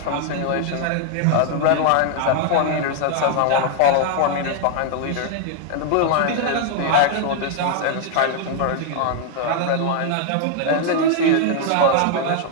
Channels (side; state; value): both; different; correlation 0.00